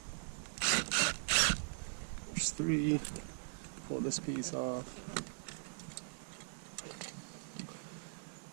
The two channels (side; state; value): left; silent; digital silence